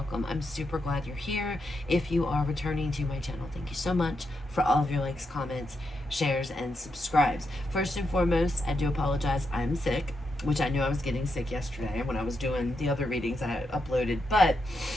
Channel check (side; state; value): both; normal; correlation 0.83